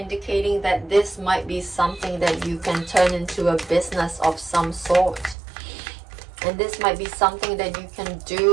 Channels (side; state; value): left; drops out; at 5.4 s